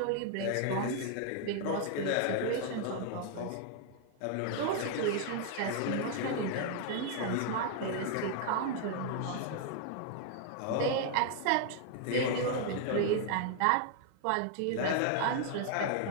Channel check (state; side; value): different; both; correlation 0.00